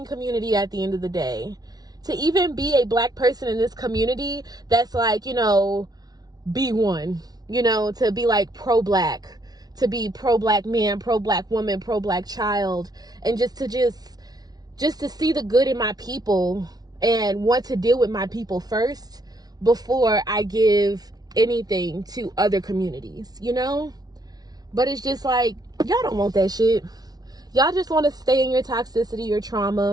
community at the end of the day. To even be a black person in this community that's like, you know, be one, you know, to be like pro-black, to be pro-black man, pro-black woman, pro-black child, and just to see the good in my people and want to deal with my people first before I give anything to other communities, you know? But it's just like, y'all don't want that shit. Y'all just want to stay in your toxicity, your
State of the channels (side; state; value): left; late; 0.19 ms